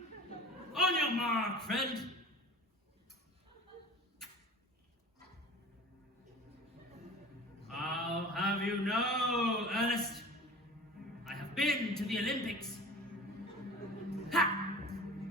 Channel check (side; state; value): both; normal; correlation 0.39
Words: On your mark, friend. I'll have you know, Earnest, I have been to the Olympics. Ha!